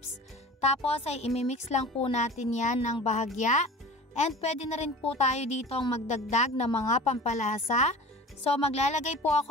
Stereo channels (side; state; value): both; normal; correlation 0.38